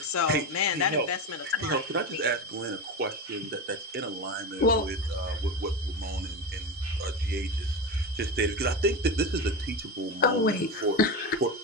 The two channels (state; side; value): normal; both; correlation 0.20